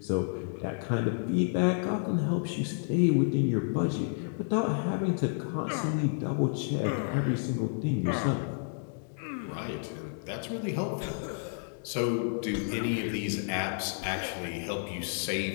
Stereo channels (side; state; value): right; silent; digital silence